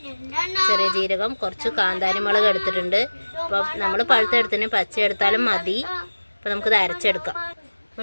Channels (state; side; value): inverted; both; correlation -1.00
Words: ചെറിയ ജീരകം, കുറച്ച് കാന്താരി മുളക് എടുത്തിട്ടുണ്ട്. അപ്പോൾ നമ്മൾ പഴുത്തെടുത്തിന് പച്ച എടുത്താലും മതി. അപ്പോൾ നമുക്കിത് അരച്ചെടുക്കാം.